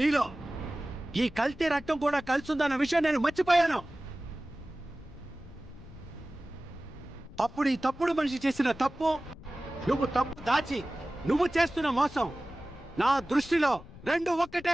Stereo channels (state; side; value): noise; left; rumble, 17 dB below the sound